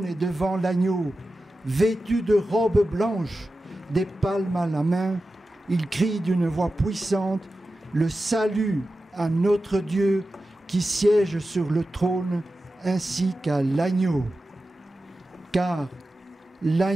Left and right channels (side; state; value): both; normal; correlation 0.93